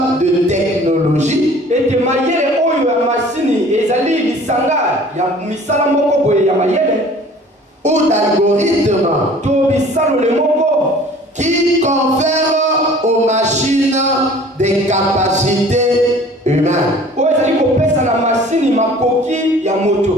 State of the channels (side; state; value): both; normal; correlation 0.49